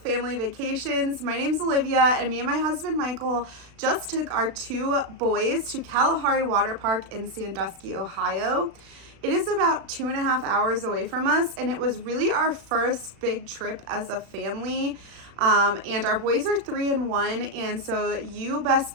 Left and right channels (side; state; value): left; late; 36 ms